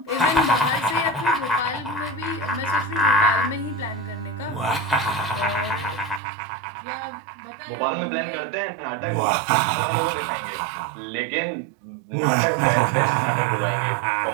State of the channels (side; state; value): left; drops out; at 6.2 s